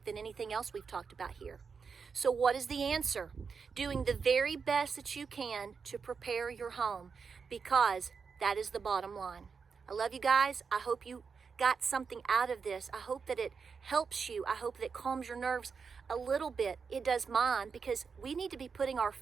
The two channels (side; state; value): left; quieter; 5.6 dB